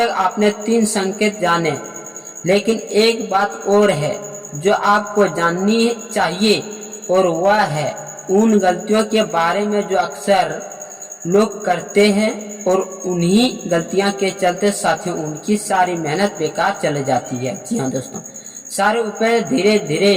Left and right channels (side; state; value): both; identical; correlation 1.00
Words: आपने 3 संकेत जाने, लेकिन एक बात और है जो आपको जाननी चाहिए, और वह है उन गलतियों के बारे में जो अक्सर लोग करते हैं और उन्हीं गलतियां के चलते साथियों उनकी सारी मेहनत बेकार चले जाती है। जी हाँ दोस्तों, सारे उपाय धीरे धीरे